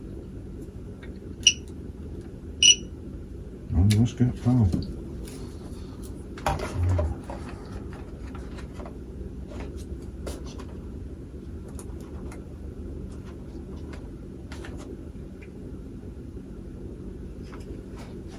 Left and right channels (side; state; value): both; identical; correlation 1.00